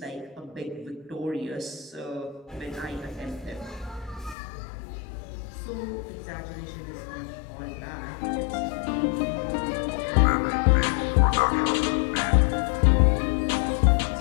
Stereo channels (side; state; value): right; drops out; at 4.4 s